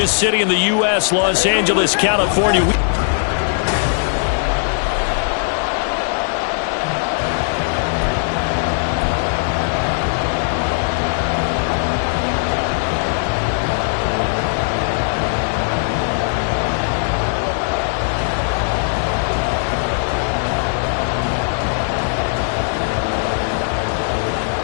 city in the U.S., Los Angeles, California.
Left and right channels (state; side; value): silent; right; digital silence